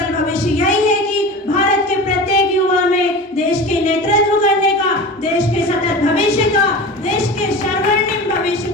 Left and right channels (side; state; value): both; normal; correlation 0.32